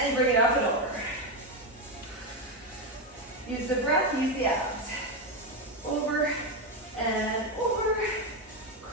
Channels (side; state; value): both; normal; correlation 0.10